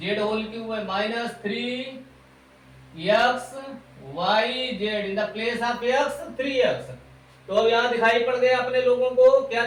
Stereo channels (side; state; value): both; identical; correlation 1.00